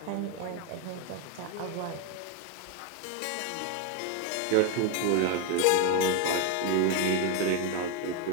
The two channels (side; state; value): both; different; correlation 0.01